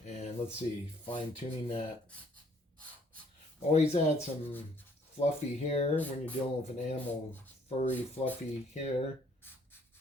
And let's see, fine tuning that. Always add some fluffy hair when you're dealing with an animal, furry, fluffy hair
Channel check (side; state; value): both; normal; correlation 0.63